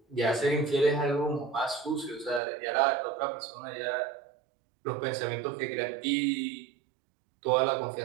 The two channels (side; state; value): left; drops out; at 2.4 s